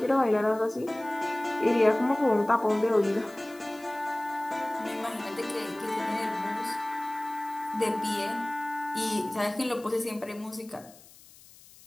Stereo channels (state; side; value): noise; left; hiss, 23 dB below the sound